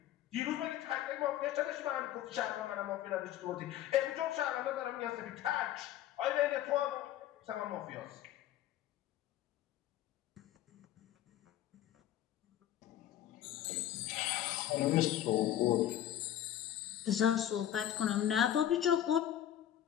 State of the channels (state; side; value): quieter; right; 11.8 dB